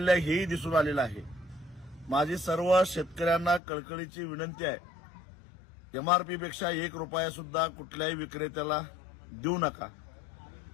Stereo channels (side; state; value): right; drops out; at 3.6 s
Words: आहे, हेही दिसून आलेलं आहे. माझी सर्व शेतकऱ्यांना कळकळीची विनंती आहे, एमआरपीपेक्षा 1 रुपया सुद्धा कुठल्याही विक्रेत्याला देऊ नका.